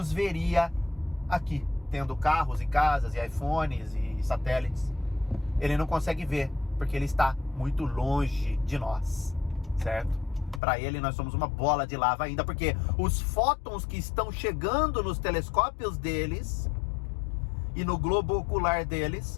veria aqui, tendo carros e casas e iPhones e satélites. Ele não consegue ver, porque ele está muito longe de nós, certo? Para ele nós somos uma bola de lava ainda, porque os fótons que estão chegando nos telescópios deles e no globo ocular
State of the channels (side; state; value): right; drops out; at 10.6 s